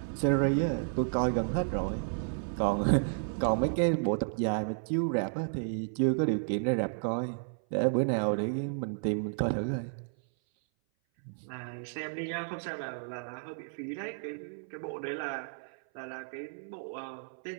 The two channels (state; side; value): silent; left; 56 dB below the other